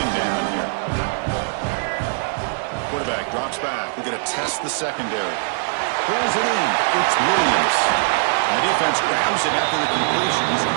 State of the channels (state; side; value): silent; left; digital silence